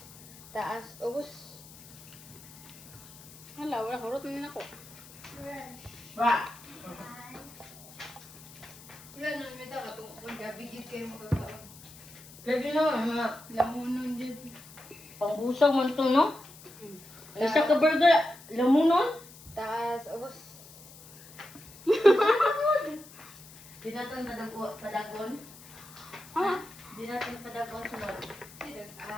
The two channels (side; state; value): left; noise; hiss, 20 dB below the sound